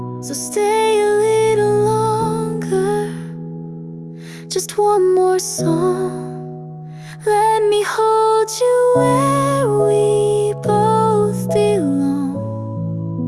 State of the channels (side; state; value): both; identical; correlation 1.00